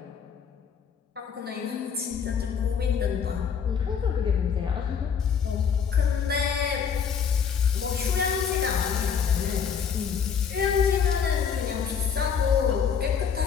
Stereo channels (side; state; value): right; quieter; 7.0 dB